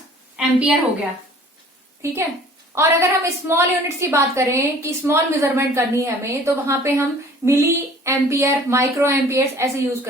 एम्पियर हो गया, ठीक है। और अगर हम स्मॉल यूनिट्स की बात करें कि स्मॉल मेजरमेंट करनी है हमें, तो वहां पे हम मिली एम्पियर, माइक्रो एम्पियर्स ऐसे यूज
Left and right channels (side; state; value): both; normal; correlation 0.50